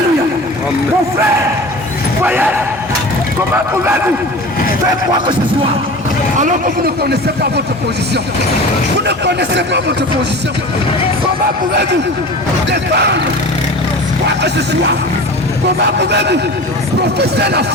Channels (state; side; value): normal; both; correlation 0.36